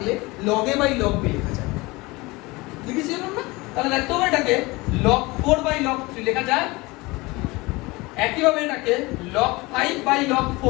log a by log b লেখা যায়, লিখেছিলাম না? তাহলে দেখতে হবে এটাকে log 4 বাই log 3 লেখা যায়, একইভাবে এটাকে log 5 বাই log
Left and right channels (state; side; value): quieter; right; 22.9 dB